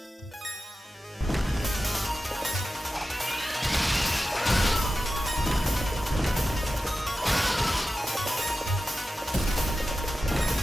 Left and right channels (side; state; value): both; normal; correlation 0.93